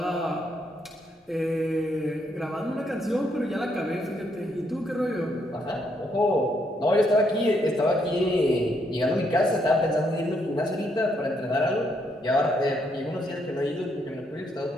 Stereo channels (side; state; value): both; normal; correlation 0.74